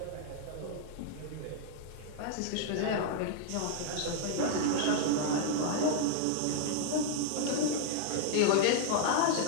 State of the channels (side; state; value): both; different; correlation 0.00